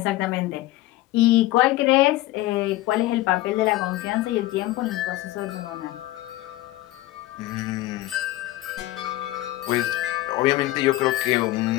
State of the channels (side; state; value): right; quieter; 16.8 dB